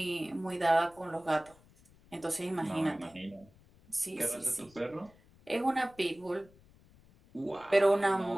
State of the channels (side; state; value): left; noise; rumble, 27 dB below the sound